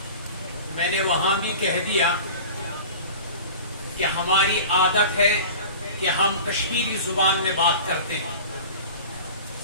میں نے وہاں بھی کہہ دیا کہ ہماری عادت ہے کہ ہم کشمیری زبان میں بات کرتے ہیں،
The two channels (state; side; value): inverted; both; correlation -0.38